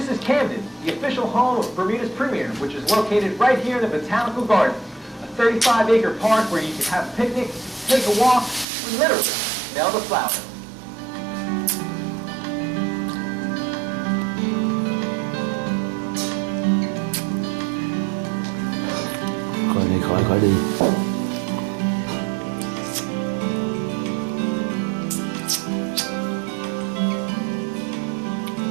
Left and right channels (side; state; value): left; drops out; at 8.7 s